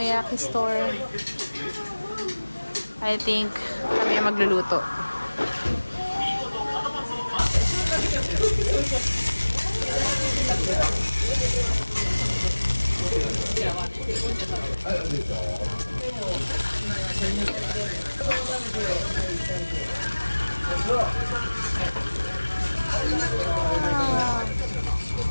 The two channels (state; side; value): inverted; both; correlation -1.00